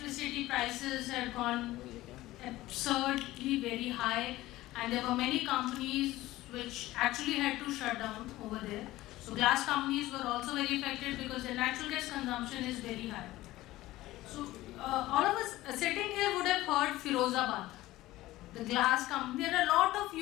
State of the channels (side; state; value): right; quieter; 17.0 dB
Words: prices had gone absurdly very high, and there were many companies which actually had to shut down over there. So glass companies were also very affected because their natural gas consumption is very high. So all of us sitting here would have heard Firozabad, the glass company. There are a lot of